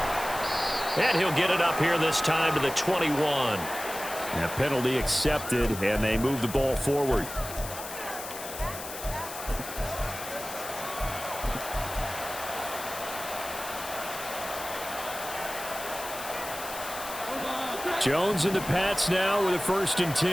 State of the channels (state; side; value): noise; left; hiss, 10 dB below the sound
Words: And he'll get it up here this time to the 21. A penalty accepted, and they move the ball forward. Jones and the Pats now with a 1st and